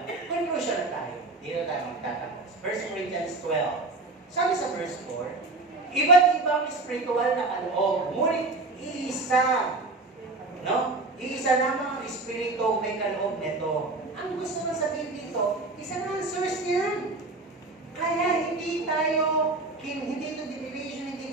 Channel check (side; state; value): left; quieter; 3.2 dB